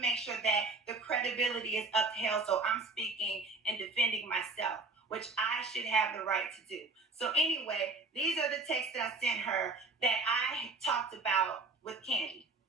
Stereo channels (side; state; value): left; quieter; 3.7 dB